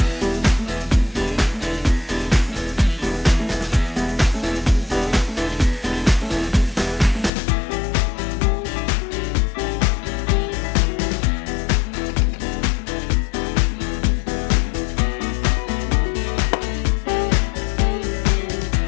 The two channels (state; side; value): drops out; right; at 7.3 s